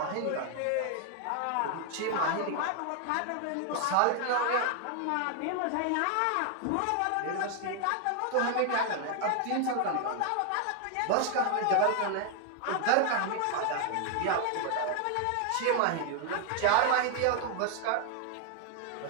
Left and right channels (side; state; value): both; different; correlation 0.00